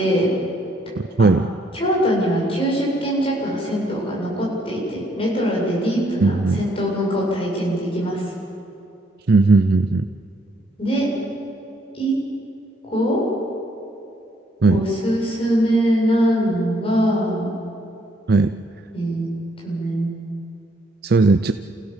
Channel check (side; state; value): both; normal; correlation 0.69